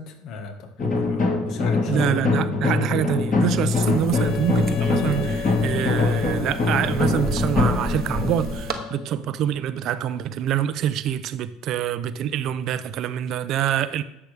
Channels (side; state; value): both; normal; correlation 0.58